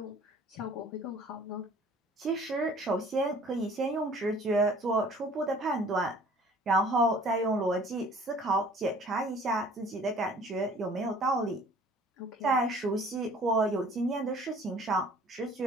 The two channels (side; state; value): both; normal; correlation 0.51